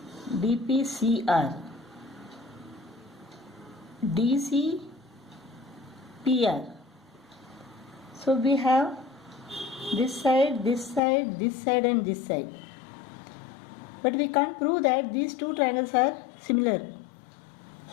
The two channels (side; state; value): right; drops out; at 11.0 s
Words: DPCR, DCPR. So we have this side, this side, this side and this side. But we can't prove that these two triangles are similar